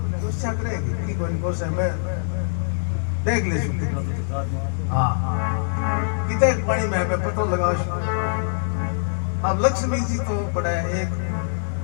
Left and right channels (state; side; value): silent; right; digital silence